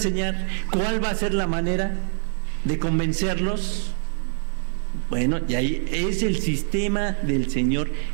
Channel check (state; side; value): silent; left; 60 dB below the other